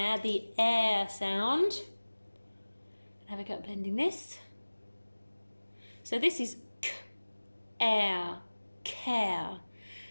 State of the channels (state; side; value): inverted; both; correlation -1.00